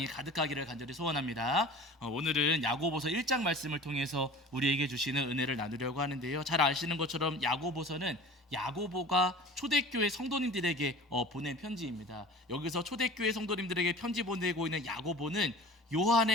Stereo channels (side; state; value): both; normal; correlation 0.41